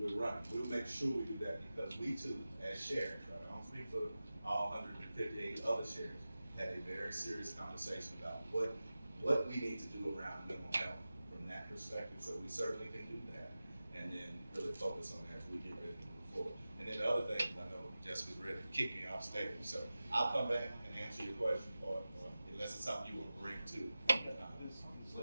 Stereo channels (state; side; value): inverted; both; correlation -0.95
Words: running. We'll make sure we do that because we too, as sheriffs, right? I don't speak for all 158 other sheriffs, had a very serious conversation about what we need to do around mental health from that perspective. So we certainly can do that. And then really focus on that as we get ready to move forward. And then the other thing, I know Jessica's ready to kick me off stage, so I'll come back and answer your question, or unless it's something you will bring to